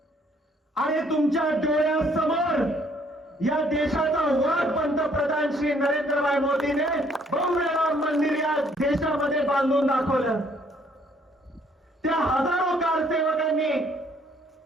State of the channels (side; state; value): both; normal; correlation 0.64